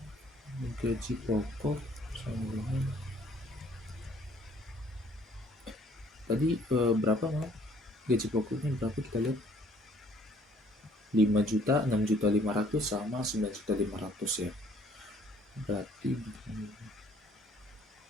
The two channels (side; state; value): both; normal; correlation 0.60